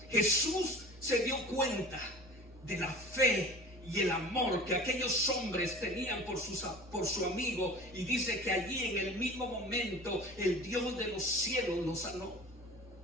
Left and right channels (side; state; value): both; normal; correlation 0.40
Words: Jesús se dio cuenta de la fe y el amor que aquellos hombres tenían por su amigo, y dice que allí en el mismo momento el Dios de los cielos lo sanó.